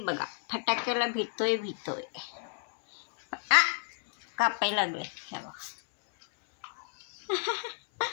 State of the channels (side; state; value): right; silent; 57 dB below the other